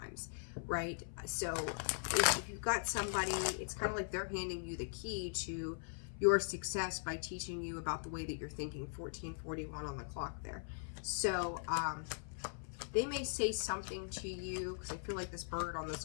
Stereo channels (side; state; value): right; silent; 51 dB below the other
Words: right? So if you've got somebody, it's kind of like they're handing you the key to your success by teaching you about the way that you're thinking. 1441 on the clock there. So they may say something to you, because I feel like this bird on this